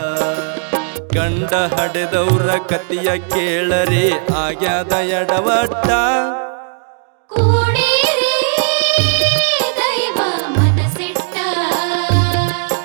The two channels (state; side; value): silent; left; 69 dB below the other